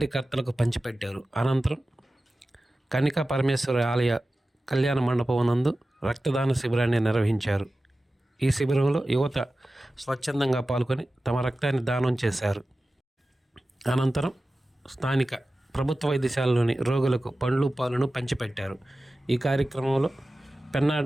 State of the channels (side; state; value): both; normal; correlation 0.95